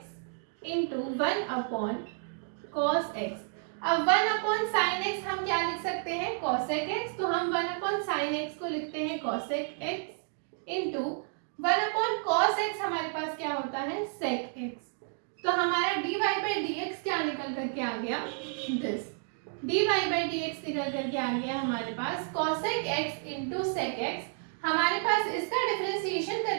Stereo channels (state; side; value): silent; left; 57 dB below the other